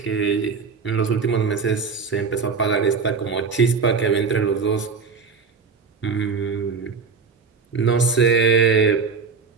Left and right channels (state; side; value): quieter; left; 5.3 dB